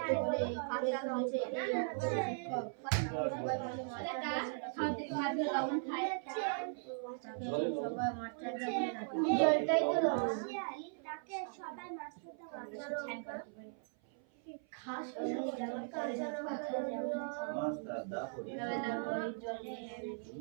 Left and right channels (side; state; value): left; silent; 52 dB below the other